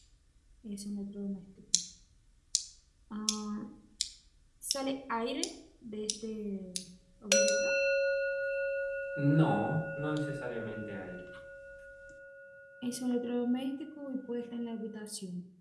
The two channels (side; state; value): both; identical; correlation 1.00